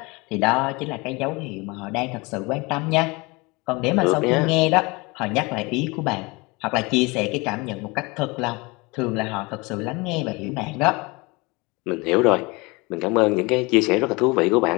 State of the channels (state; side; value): quieter; right; 25.7 dB